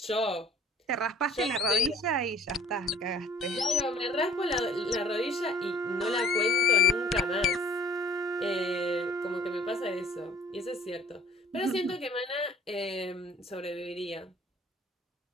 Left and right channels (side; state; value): both; normal; correlation 0.52